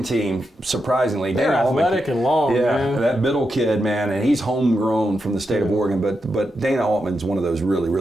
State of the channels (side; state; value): both; normal; correlation 0.86